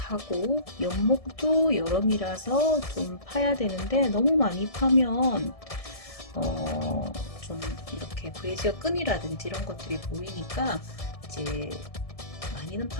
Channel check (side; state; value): right; late; 1.7 ms